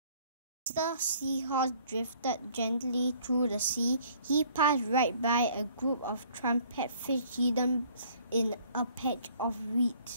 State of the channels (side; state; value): both; inverted; correlation -0.58